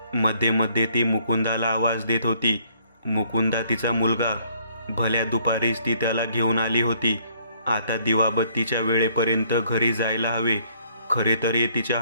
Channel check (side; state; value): both; inverted; correlation -0.64